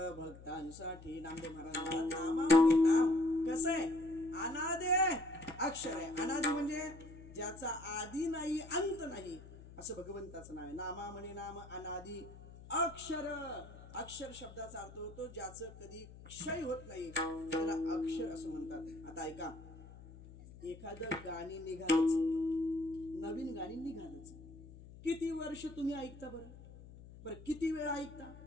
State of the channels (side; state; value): left; noise; hum, 17 dB below the sound